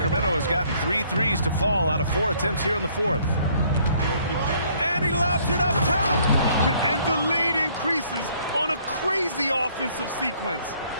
has gotten 3 threes to fall out of 4 attempts here in the fourth. And he lobs it up top. And the lead increases on a crazy offensive sequence.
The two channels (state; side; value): inverted; both; correlation -0.62